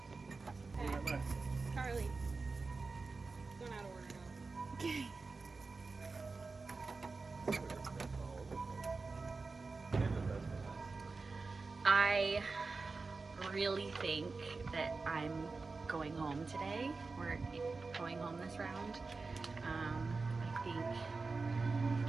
Hey, Carly. Going out of order now. Okay. I really think that I'm going home today. We're going home this round. I think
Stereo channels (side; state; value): left; quieter; 4.0 dB